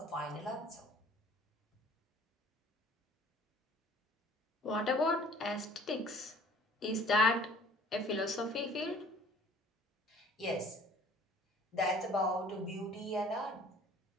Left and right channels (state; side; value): normal; both; correlation 0.53